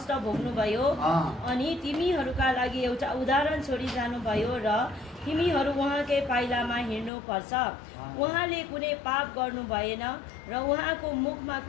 भोग्नुभयो अनि तिमीहरूका लागि एउटा उदाहरण छोडी जानुभयो र तिमीहरू उहाँकै पाइलामा हिँड्नुपर्छ। उहाँले कुनै पाप गर्नु भएन र उहाँको मुखमा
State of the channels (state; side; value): drops out; right; at 7.1 s